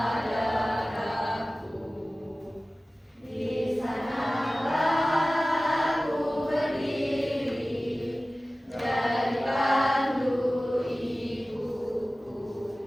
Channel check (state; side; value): normal; both; correlation 0.97